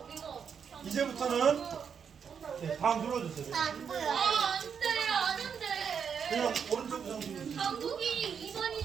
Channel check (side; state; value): left; quieter; 7.0 dB